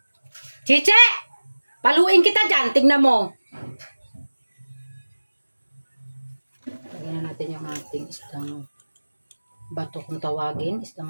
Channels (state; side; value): inverted; both; correlation -1.00